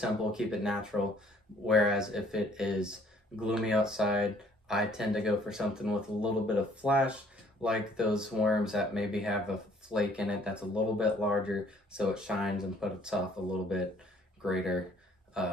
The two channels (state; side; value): normal; both; correlation 0.60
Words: keep it natural. Whereas if it is gloomy outside, I tend to go for something with a little bit of flash, like those worms that maybe have a flake in it that's a little bit larger, so it shines and puts off a little bit greater